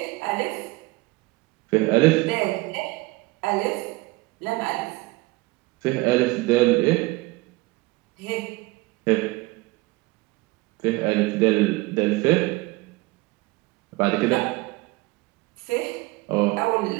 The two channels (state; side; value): quieter; left; 21.8 dB